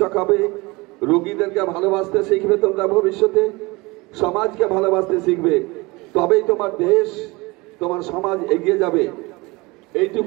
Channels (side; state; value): left; quieter; 23.8 dB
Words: হবে রোগীদেরকে ভালোবাসতে শিখবে তোমরা ভবিষ্যতে সমাজকে ভালোবাসতে শিখবে তবেই তোমার দেশ তোমার সমাজ এগিয়ে যাবে